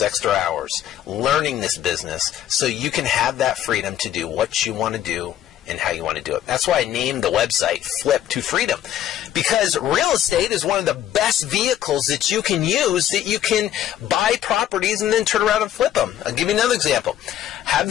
extra hours learning this business so you can have that freedom to do what you want to do and how you want to do it. That's why I named the website Flip to Freedom. Because real estate is one of the best vehicles that you can use, that you can buy properties and then turn around and flip them. I'll give you another example. Have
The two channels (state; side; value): quieter; right; 11.4 dB